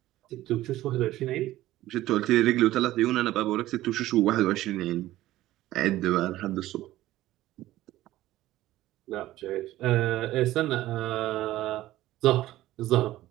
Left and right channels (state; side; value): quieter; left; 15.4 dB